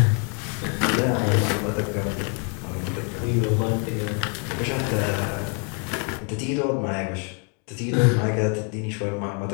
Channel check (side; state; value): right; quieter; 38.2 dB